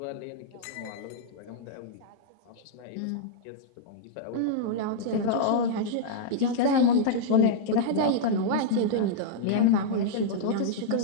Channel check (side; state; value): both; different; correlation -0.02